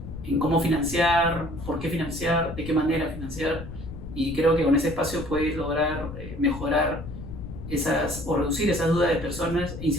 cómo financiar, por qué financiar, de qué manera financiar. Y creo que con ese espacio puedes lograr mejorar o reducir esas dudas de personas e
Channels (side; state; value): left; noise; rumble, 10 dB below the sound